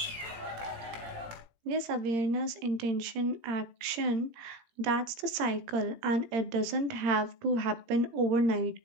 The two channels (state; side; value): late; left; 18 ms